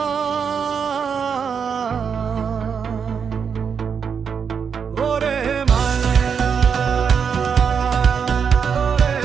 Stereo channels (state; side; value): quieter; left; 6.7 dB